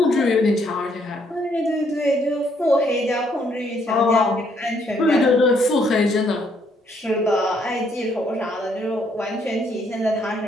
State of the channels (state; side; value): normal; both; correlation 0.70